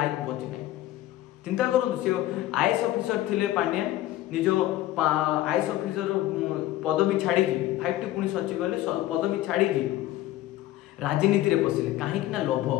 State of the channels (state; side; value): quieter; right; 15.0 dB